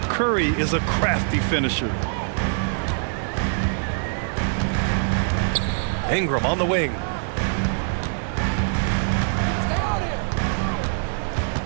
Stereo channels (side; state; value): left; silent; digital silence